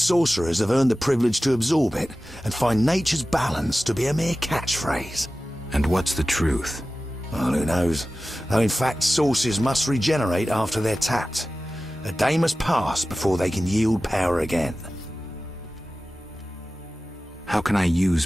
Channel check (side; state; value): both; normal; correlation 0.95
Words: have earned the privilege to absorb it and find nature's balance to be a mere catchphrase. And what's the truth? Well, who knows? Though in fact, sources must regenerate after they're tapped. A day must pass before they can yield power again. How can I use